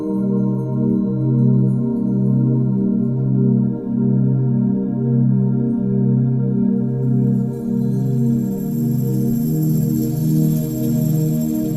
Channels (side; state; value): both; identical; correlation 1.00